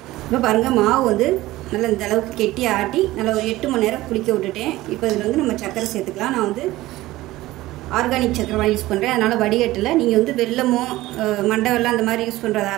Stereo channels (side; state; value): left; quieter; 17.4 dB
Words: இப்போ பாருங்கள், மாவு வந்து நல்லா இந்த அளவுக்கு கெட்டி ஆட்டி நல்லா ஒரு 8 மணி நேரம் புளிக்க விட்டுட்டேன். இப்போ இதில் வந்து நம்ம சர்க்கரை சேர்த்துக்கலாம். நான் வந்து ஆர்கானிக் சக்கரை யூஸ் பண்ணுறேன், அதனால் வடிகட்டில். நீங்கள் வந்து வெல்லமோ மண்டை வெல்லம் அந்த மாதிரி யூஸ் பண்ணுறதா